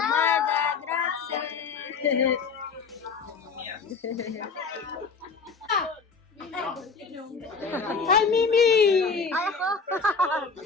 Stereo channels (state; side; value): quieter; right; 5.0 dB